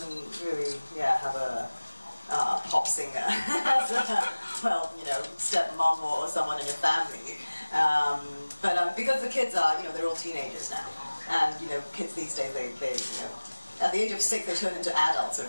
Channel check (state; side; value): inverted; both; correlation -1.00